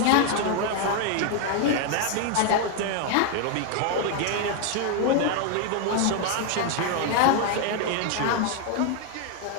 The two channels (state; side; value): different; both; correlation 0.01